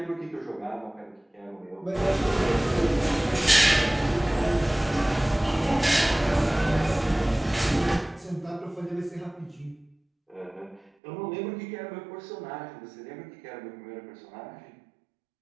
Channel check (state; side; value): drops out; left; at 10.9 s